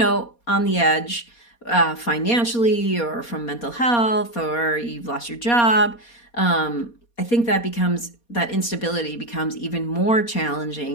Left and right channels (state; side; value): late; right; 4.2 ms